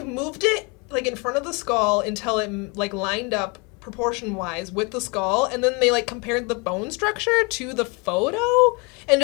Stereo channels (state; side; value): quieter; right; 30.7 dB